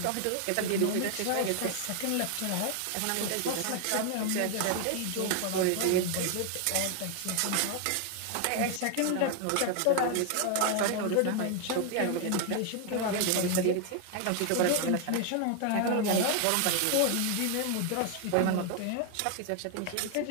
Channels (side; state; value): both; different; correlation 0.00